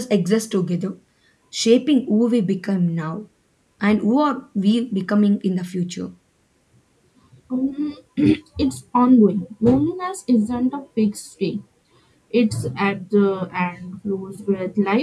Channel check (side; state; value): both; identical; correlation 1.00